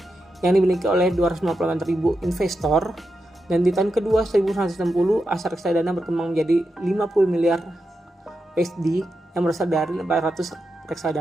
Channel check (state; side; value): normal; both; correlation 0.87